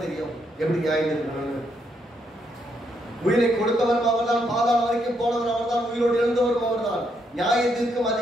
தெரியும் எப்படி நியாயந்திருக்கணும். உயிரை கொடுத்தவரும் அவர் தான், பாதாளம் வரைக்கும் போனவர் அவர் தான், உயிரோடு எழுந்தவரும் அவர் தான். நியாயத்திற்கும்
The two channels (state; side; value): normal; both; correlation 0.76